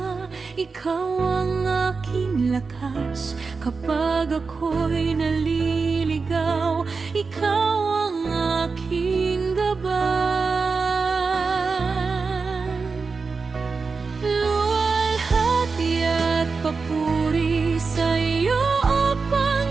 ikaw ang aking lakas. Kapag ako'y naliligaw, ikaw ang aking gabay. Luwalhati at papuri sa iyo, O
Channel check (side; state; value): left; quieter; 4.6 dB